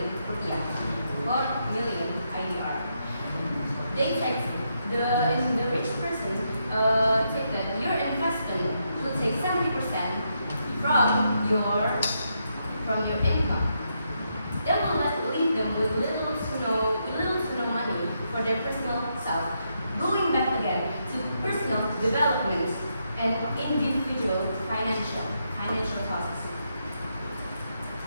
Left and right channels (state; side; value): inverted; both; correlation -0.80